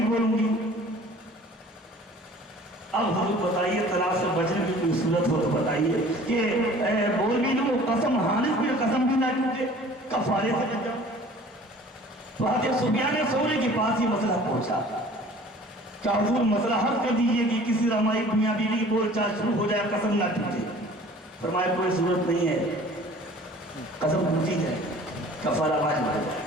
بولوں گی. اب حضور بتائیے طلاق سے بچنے کی کوئی صورت ہو تو بتائیے کہ بول بھی لوں قسم حالف بھی قسم بھی نہ ٹوٹے کفارے سے بچ جاؤ. تو حضرت سفیان ثوری کے پاس یہ مسئلہ پہنچا کہ حضور مسئلہ حل کر دیجئے کہ کسی رمائی میاں بیوی کی بول چال شروع ہو جائے قسم نہ ٹوٹے. فرمایا کوئی صورت نہیں ہے قسم ٹوٹی جائے کفارہ واجب ہے.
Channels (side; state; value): both; normal; correlation 0.48